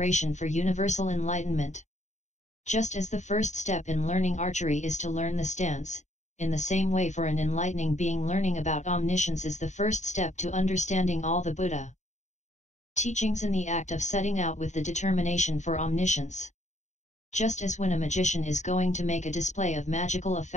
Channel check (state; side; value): late; right; 0.34 ms